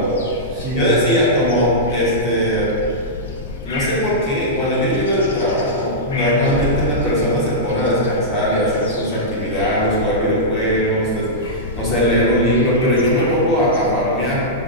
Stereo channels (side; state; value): left; noise; rumble, 14 dB below the sound